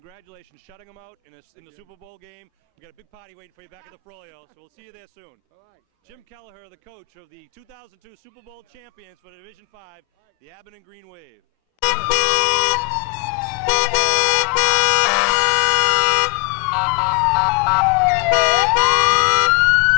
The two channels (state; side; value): quieter; right; 28.8 dB